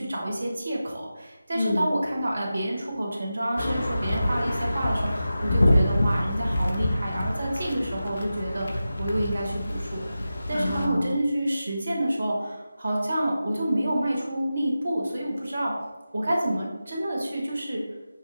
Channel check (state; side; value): inverted; both; correlation -0.93